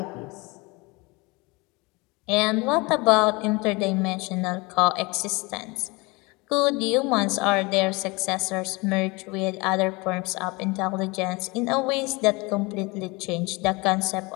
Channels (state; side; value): quieter; right; 25.6 dB